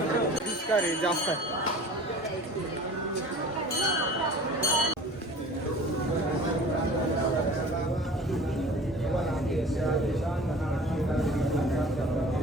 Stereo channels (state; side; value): normal; both; correlation 0.43